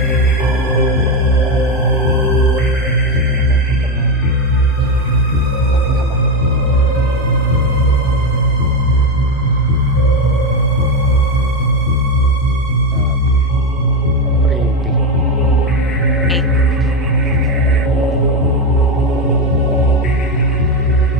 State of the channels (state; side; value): normal; both; correlation 0.12